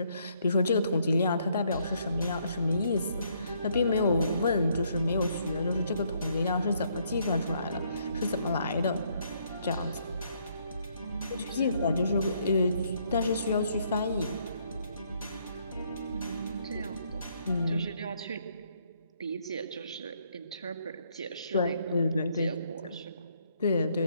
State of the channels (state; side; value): inverted; both; correlation -0.70